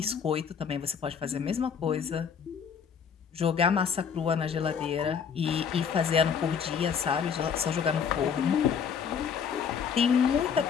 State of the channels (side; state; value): right; quieter; 7.0 dB